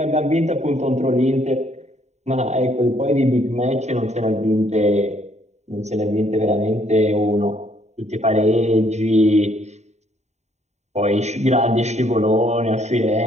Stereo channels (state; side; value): late; left; 0.32 ms